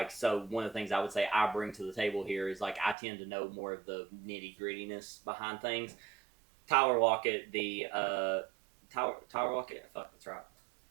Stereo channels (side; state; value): left; drops out; at 3.0 s